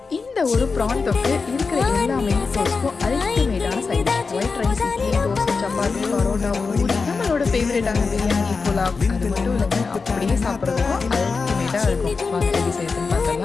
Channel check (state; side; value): quieter; right; 4.6 dB